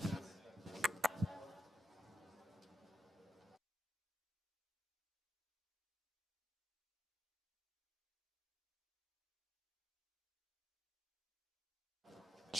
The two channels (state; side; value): normal; both; correlation 0.85